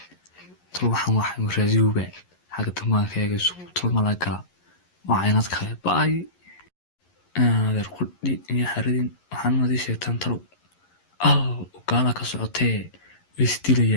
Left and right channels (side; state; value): right; late; 11 ms